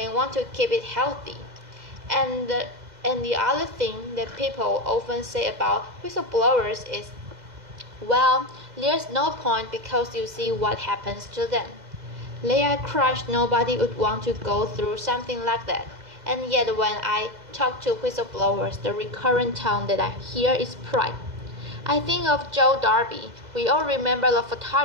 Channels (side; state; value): left; late; 2.0 ms